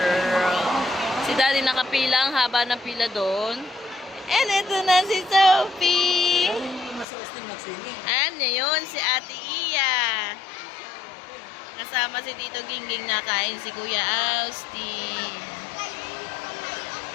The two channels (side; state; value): right; drops out; at 7.1 s